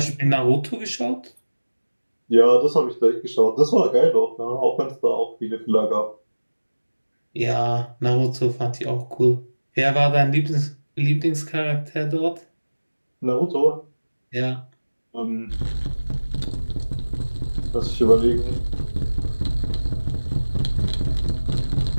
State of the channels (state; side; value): inverted; both; correlation -1.00